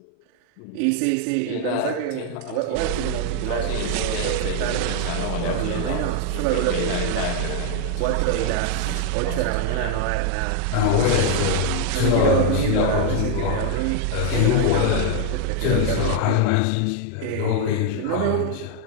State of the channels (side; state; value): both; different; correlation 0.00